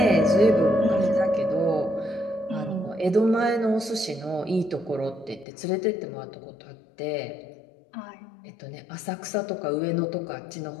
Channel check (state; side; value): drops out; right; at 5.5 s